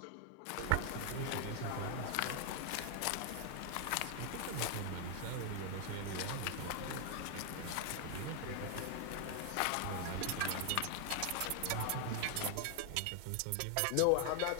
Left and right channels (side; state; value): both; different; correlation 0.00